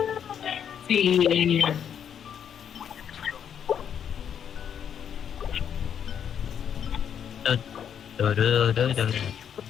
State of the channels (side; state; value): right; quieter; 8.4 dB